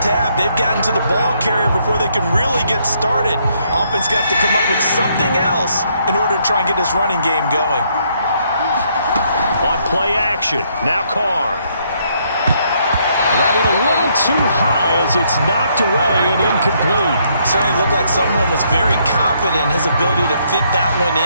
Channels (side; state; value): both; inverted; correlation -0.71